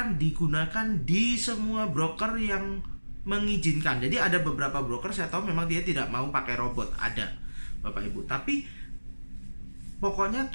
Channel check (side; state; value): both; inverted; correlation -1.00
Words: digunakan di semua broker yang mengizinkan. Jadi ada beberapa broker saya tahu memang dia tidak mau pakai robot, ada Bapak Ibu. Tapi pokoknya